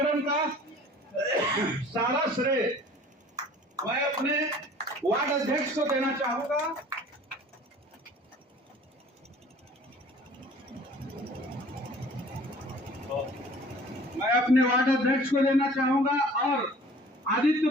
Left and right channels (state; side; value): normal; both; correlation 0.49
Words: का सारा श्रेय मैं अपने वार्ड अध्यक्ष को देना चाहूंगा। मैं अपने वार्ड अध्यक्ष को देना चाहूंगा और